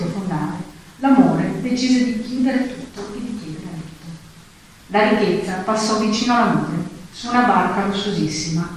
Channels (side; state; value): both; identical; correlation 1.00